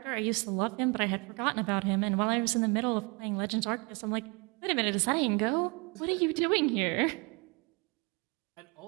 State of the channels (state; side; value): quieter; left; 30.5 dB